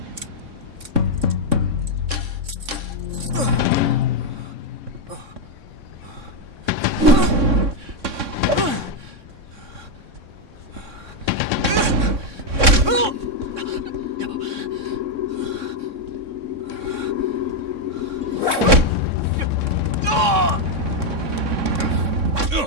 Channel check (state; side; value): late; left; 3.6 ms